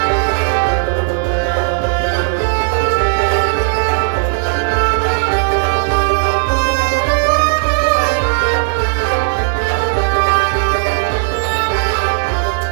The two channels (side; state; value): left; silent; 55 dB below the other